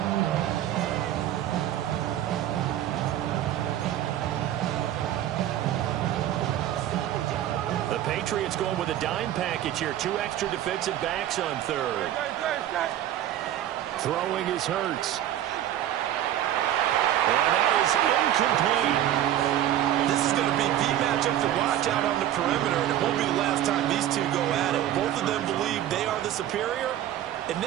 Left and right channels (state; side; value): quieter; left; 12.0 dB